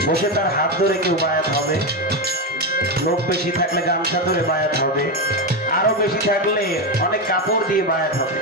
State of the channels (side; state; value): both; normal; correlation 0.11